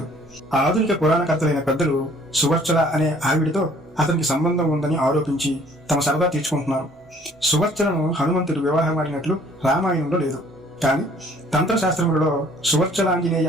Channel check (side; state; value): both; normal; correlation 0.57